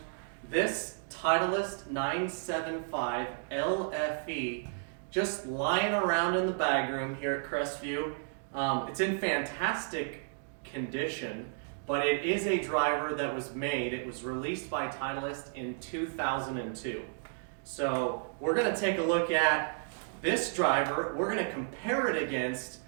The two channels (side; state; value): left; silent; digital silence